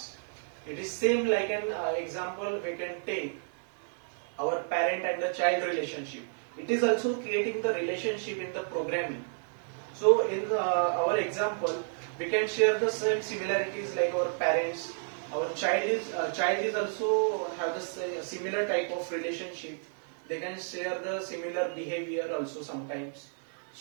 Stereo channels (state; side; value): silent; left; digital silence